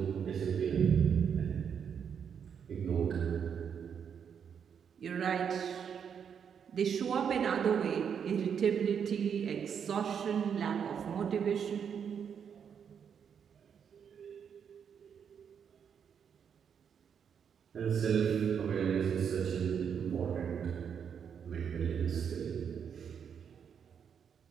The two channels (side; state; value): left; quieter; 7.5 dB